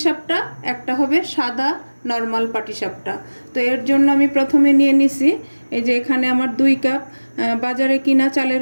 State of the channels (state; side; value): inverted; both; correlation -1.00